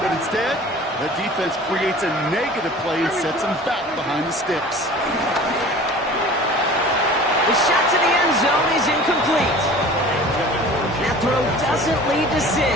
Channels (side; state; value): both; normal; correlation 0.43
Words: instead, the defense creates a negative play and sets them back behind the sticks. The shot to the end zone is incomplete. That throw doesn't lead to 6.